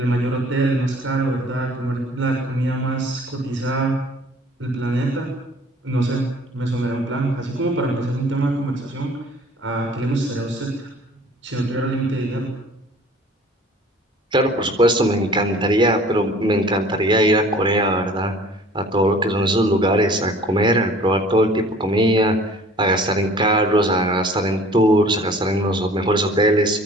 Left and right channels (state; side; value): normal; both; correlation 0.50